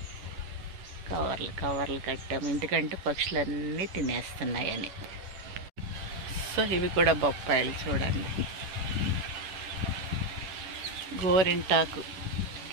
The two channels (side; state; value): left; late; 10 ms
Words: కవర్లు కట్టాము ఎందుకంటే పక్షులన్నీ తినేస్తున్నాయని. సో ఇవి కూడా బొప్పాయిలు చూడండి. గోరింటాకు